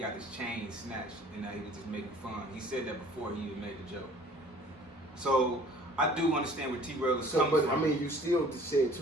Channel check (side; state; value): both; normal; correlation 0.52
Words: his chain snatched and that he was just making fun. He said that before he even made the joke. So I do understand where T-Rail is coming from. But I mean, you still said